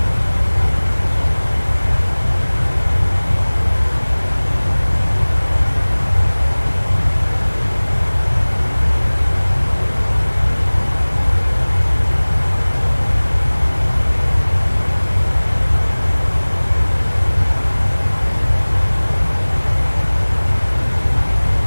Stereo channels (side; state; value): both; inverted; correlation -1.00